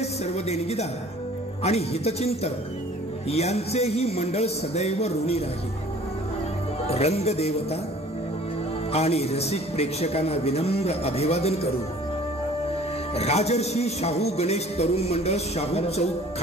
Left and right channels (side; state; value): both; normal; correlation 0.50